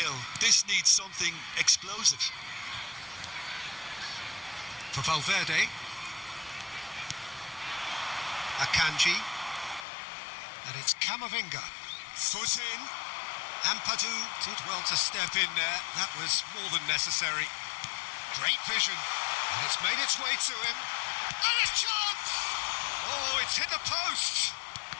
This needs something explosive. For Valverde. Akanji. And it's Camavinga. Foot in. Ampadu did well to step in there. That was more than necessary. Great vision. And it's made its way to him. And a chance! Oh, it's hit the post.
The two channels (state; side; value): drops out; right; at 9.9 s